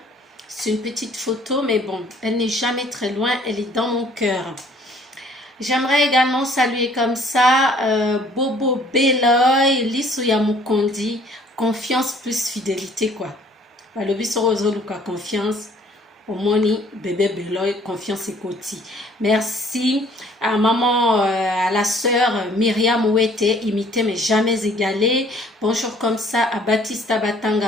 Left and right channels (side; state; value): both; normal; correlation 0.58